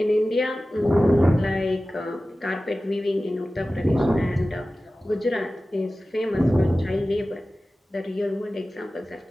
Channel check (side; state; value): both; normal; correlation 0.96